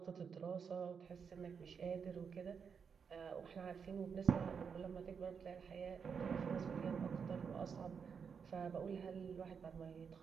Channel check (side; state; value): left; quieter; 6.4 dB